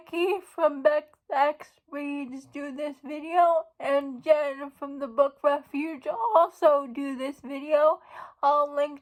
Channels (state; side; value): identical; both; correlation 1.00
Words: from Bex Reads do this video, and Jen from the Book Refuge also do this video. I'll